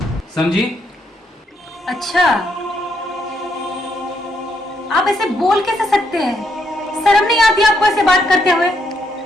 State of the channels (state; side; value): normal; both; correlation 0.76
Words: समझी? अच्छा, आप ऐसे बोल कैसे सकते हैं? शर्म नहीं आती आपको ऐसे बात करते हुए?